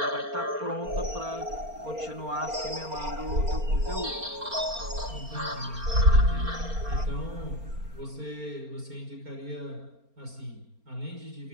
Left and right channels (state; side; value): late; left; 4.3 ms